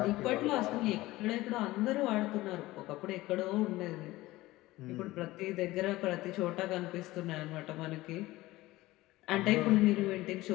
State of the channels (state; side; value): quieter; right; 18.2 dB